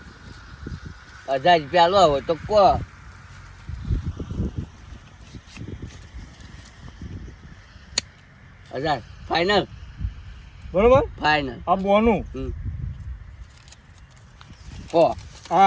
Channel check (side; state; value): both; identical; correlation 1.00